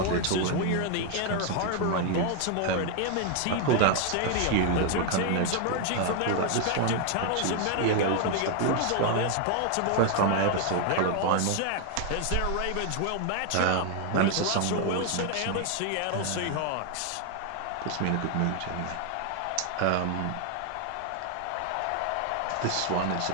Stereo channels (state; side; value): different; both; correlation 0.01